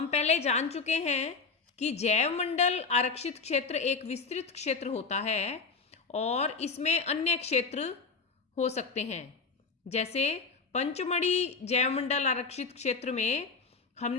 पहले जान चुके हैं कि जैव मंडल आरक्षित क्षेत्र एक विस्तृत क्षेत्र होता है और इसमें अन्य क्षेत्र हो सकते हैं। जैसे पंचमढ़ी जैव मंडल आरक्षित क्षेत्र में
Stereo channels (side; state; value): right; quieter; 4.7 dB